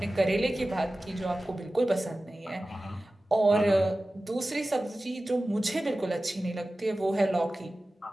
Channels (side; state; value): both; normal; correlation 0.96